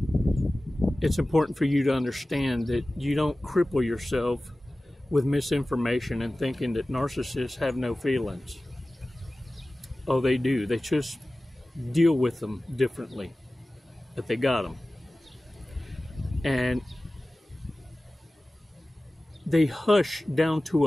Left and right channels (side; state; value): both; normal; correlation 0.97